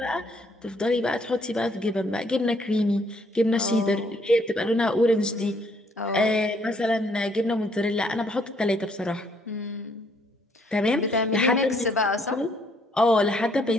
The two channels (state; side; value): normal; both; correlation 0.67